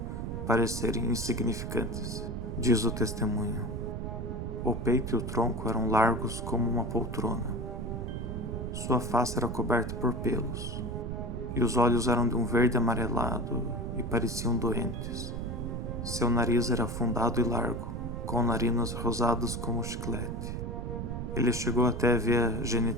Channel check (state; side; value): noise; right; rumble, 4 dB below the sound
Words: parecerem insignificantes, diz o testemunho. O peito e o tronco eram largos como uma poltrona. Sua face era coberta por pelos, e os olhos eram de um verde amarelado e pareciam doentes. Seu nariz era afundado e largo, com narinas rosadas como chiclete. Ele chegou até a ver a